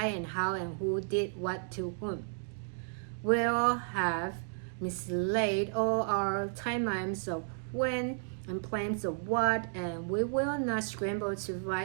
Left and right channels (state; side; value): silent; left; digital silence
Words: and how and who did what to whom. We'll have mislaid all our timelines of when and plans of what, and we will not scramble to